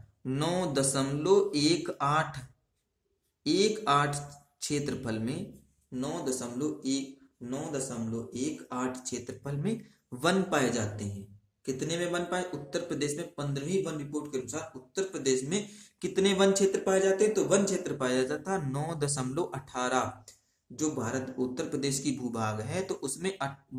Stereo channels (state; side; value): identical; both; correlation 1.00